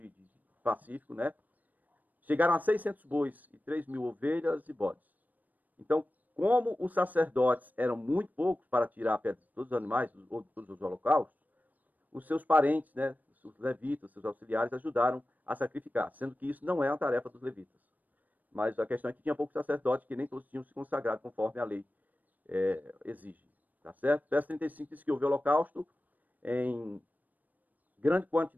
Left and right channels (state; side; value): late; left; 0.083 ms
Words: de pacífico, né? Chegaram a 600 bois e 3.000 ovelhas e bodes. Então, como os sacerdotes eram muito poucos para tirar a pedra de todos os animais, todos os holocaustos, os seus parentes, né, os levitas, seus auxiliares, ajudaram a sacrificar, sendo que isso não é uma tarefa dos levitas. Mas a questão é que tinha poucos sacerdotes, que nem todos tinham se consagrado conforme a lei exige. Tá certo? Verso 35 diz que houve holocausto em grande